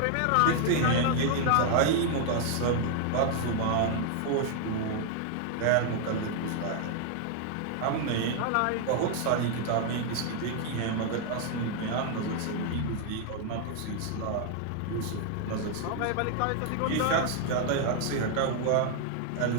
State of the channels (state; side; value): different; both; correlation 0.00